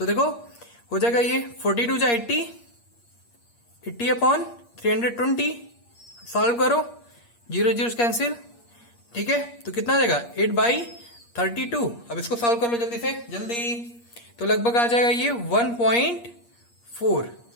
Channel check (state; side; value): late; right; 8.5 ms